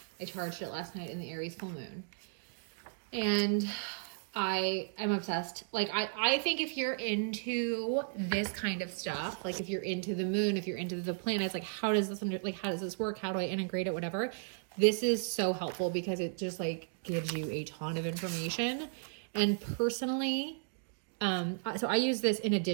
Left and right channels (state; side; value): silent; left; digital silence